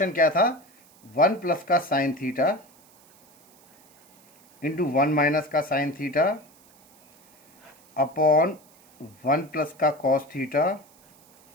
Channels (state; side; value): noise; right; hiss, 29 dB below the sound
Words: क्या था, 1 प्लस का साइन थीटा इंटू 1 माइनस का साइन थीटा अपॉन 1 प्लस का कॉस थीटा